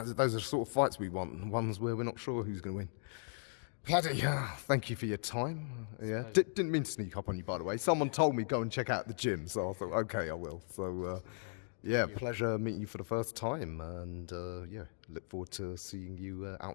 are the sort of fights we want, ones where we're not sure who's going to win. Paddy, thank you for your time. Yeah, didn't mean to sneak up on you, by the way. Someone told me go and check out the gym, so I thought, okay, I will. So, yeah, pleasure meeting you for the first time, and yeah, look forward to seeing you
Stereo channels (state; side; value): silent; right; digital silence